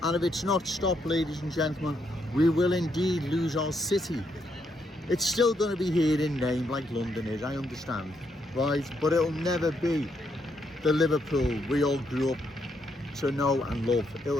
And if it's not stopped, ladies and gentlemen, we will indeed lose our city. It's still going to be here in name like London is, I understand, right? But it'll never be the Liverpool we all grew up to know and love.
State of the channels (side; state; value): both; normal; correlation 0.77